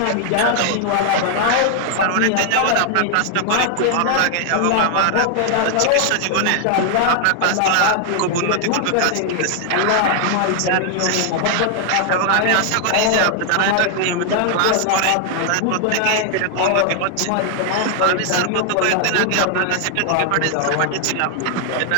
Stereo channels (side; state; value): both; different; correlation 0.00